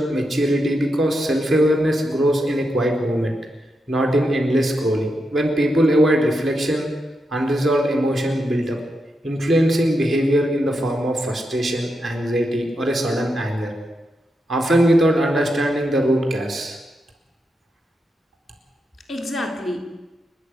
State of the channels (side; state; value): both; normal; correlation 0.85